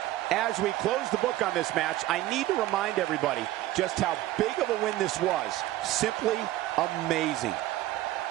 As we close the book on this match, I need to remind everybody just how big of a win this was. Simply amazing.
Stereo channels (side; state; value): left; quieter; 15.4 dB